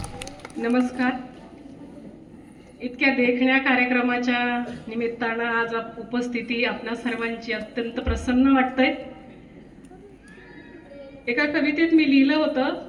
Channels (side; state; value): both; identical; correlation 1.00